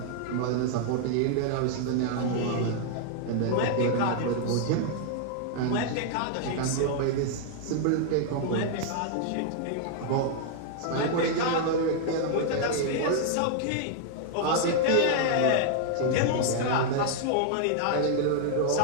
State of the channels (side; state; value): both; different; correlation 0.00